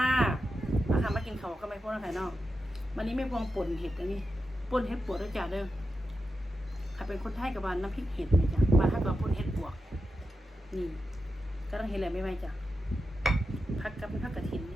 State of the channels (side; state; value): both; normal; correlation 0.89